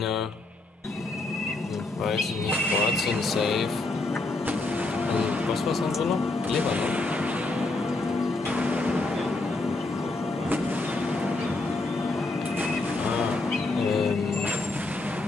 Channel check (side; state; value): right; quieter; 3.1 dB